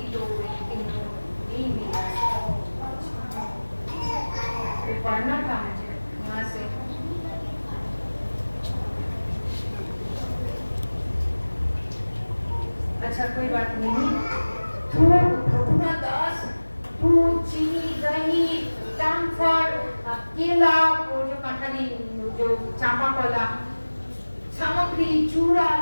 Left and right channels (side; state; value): both; inverted; correlation -1.00